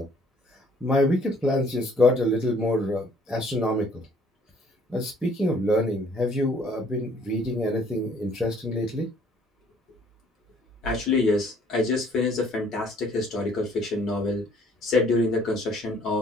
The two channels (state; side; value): normal; both; correlation 0.60